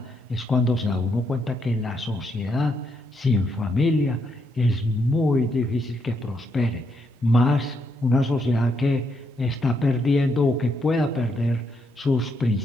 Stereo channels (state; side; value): normal; both; correlation 0.77